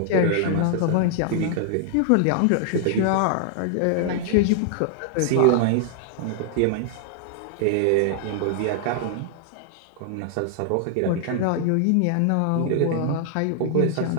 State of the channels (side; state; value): both; different; correlation -0.01